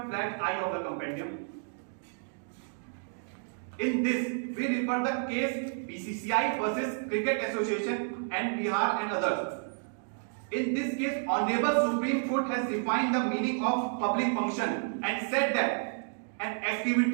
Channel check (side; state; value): left; silent; digital silence